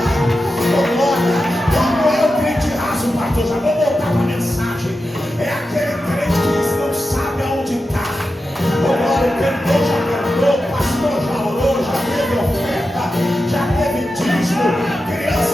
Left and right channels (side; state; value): both; normal; correlation 0.91